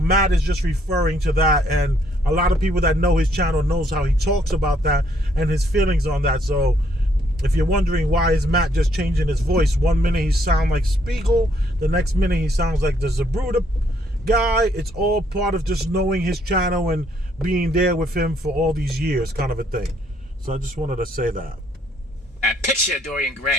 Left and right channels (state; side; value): normal; both; correlation 0.69